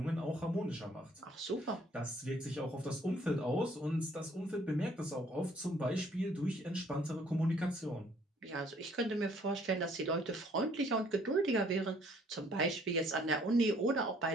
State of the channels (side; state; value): both; normal; correlation 0.61